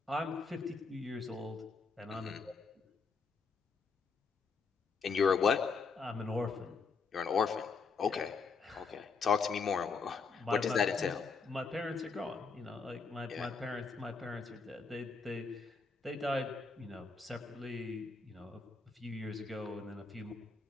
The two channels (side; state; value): right; quieter; 4.9 dB